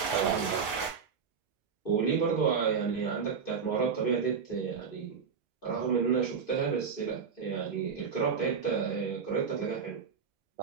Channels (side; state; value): left; quieter; 6.1 dB